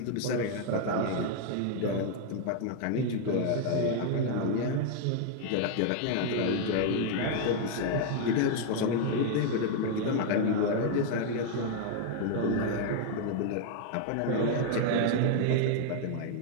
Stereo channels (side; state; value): both; different; correlation 0.00